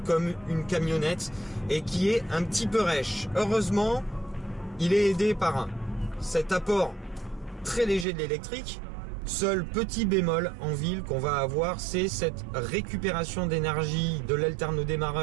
comme une camionnette et qui est un petit peu rêche. Heureusement, il est aidé par cet apport très léger de l'électrique. Seul petit bémol en ville qu'on va avoir, c'est cette récupération d'énergie de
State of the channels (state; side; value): drops out; left; at 8.1 s